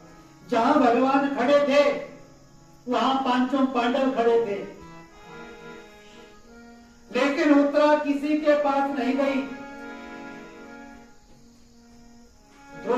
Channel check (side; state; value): both; identical; correlation 1.00